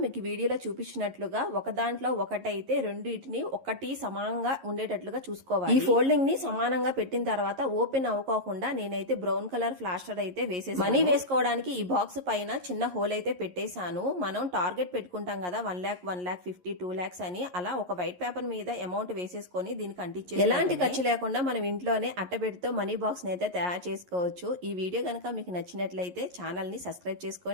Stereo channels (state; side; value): late; left; 11 ms